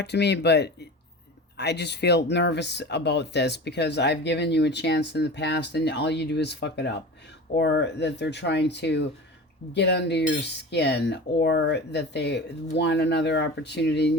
to me, but I just feel nervous about this because I've given you a chance in the past and all you do is fuck it up. Or that they're trying to get under your skin, or that they want another opportunity and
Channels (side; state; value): both; normal; correlation 0.33